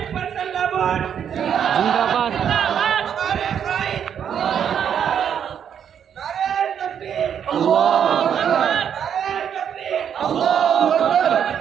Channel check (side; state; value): left; quieter; 8.5 dB